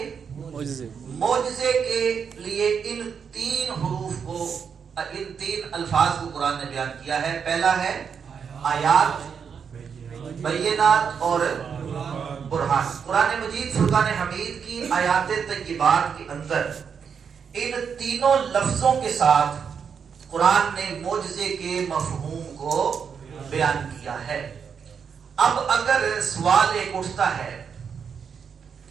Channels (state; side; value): quieter; left; 6.7 dB